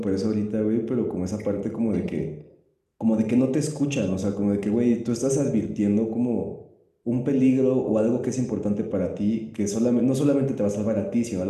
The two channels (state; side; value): identical; both; correlation 1.00